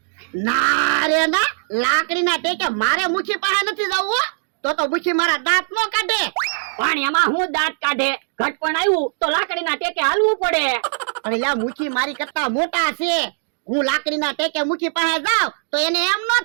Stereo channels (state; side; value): silent; left; digital silence